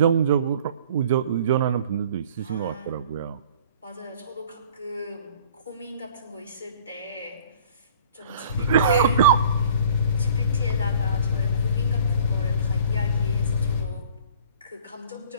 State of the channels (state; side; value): inverted; both; correlation -0.49